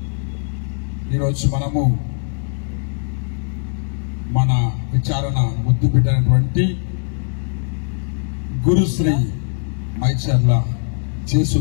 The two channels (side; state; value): right; silent; digital silence